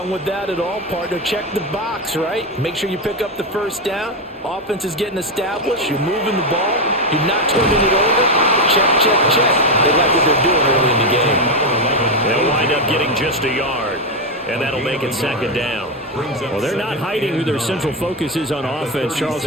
with that at all, partner. Check the box, right? Make sure you pick up the first down. Offense is getting established. You're moving the ball. You're not turning it over. Check, check, check. They like what they're doing early in the game. They'll wind up getting just a yard. And that'll make it second down. Well, they're not hiding who their central focus is on offense. Charles,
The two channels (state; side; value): normal; both; correlation 0.08